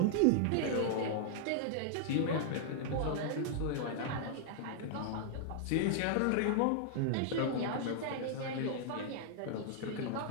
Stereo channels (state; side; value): different; both; correlation -0.01